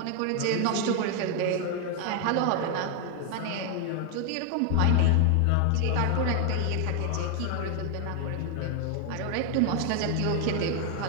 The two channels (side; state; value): both; different; correlation 0.01